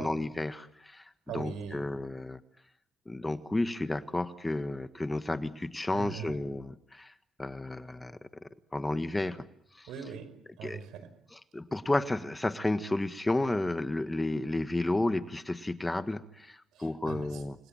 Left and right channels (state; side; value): normal; both; correlation 0.97